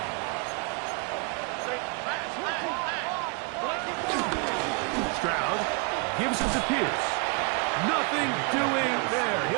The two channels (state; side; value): quieter; left; 33.4 dB